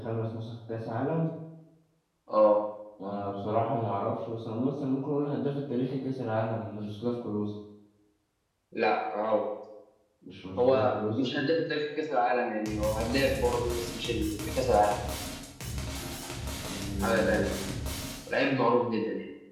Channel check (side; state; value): both; identical; correlation 1.00